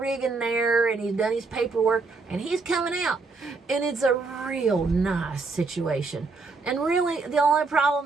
there, and he's done his paperwork, and he's coming out. And it's a real nice situation. And really, the only problem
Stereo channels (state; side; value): quieter; left; 4.0 dB